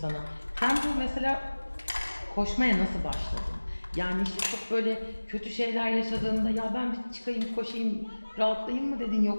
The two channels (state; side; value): inverted; both; correlation -1.00